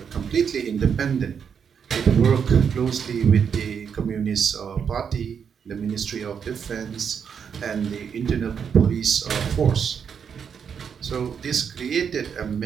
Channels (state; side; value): quieter; left; 7.1 dB